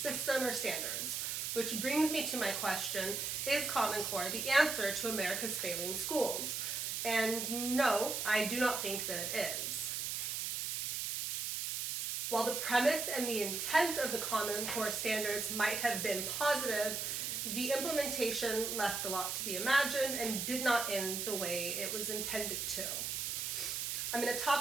or standards, which brings me to my question, is Common Core the answer to America's failing schools? And no, I do not think that it is. While the premise and the intent of the Common Core standards might have been positive, the implementation left a lot to be imagined and did not end the way it was intended to. I'm going to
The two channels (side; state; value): right; noise; hiss, 2 dB below the sound